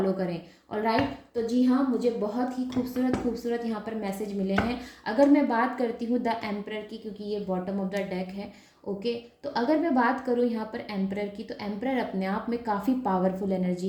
करें। और राइट, तो जी हाँ, मुझे बहुत ही खूबसूरत खूबसूरत यहाँ पर मैसेज मिले हैं। अगर मैं बात करती हूँ द एम्परर की, क्योंकि ये बॉटम ऑफ द डेक है, ओके, तो अगर मैं बात करूँ यहाँ पर एम्परर की, तो एम्परर अपने आप में काफ़ी पावरफुल एनर्जी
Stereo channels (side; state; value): both; identical; correlation 1.00